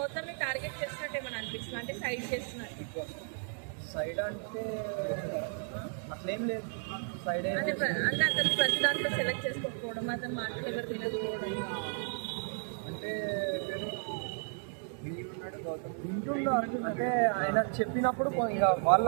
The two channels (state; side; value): silent; left; 55 dB below the other